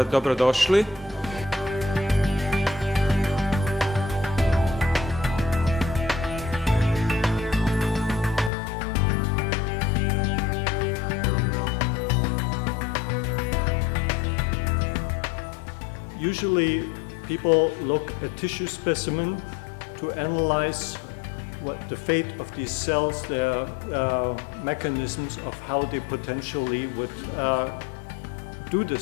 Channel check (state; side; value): drops out; right; at 8.5 s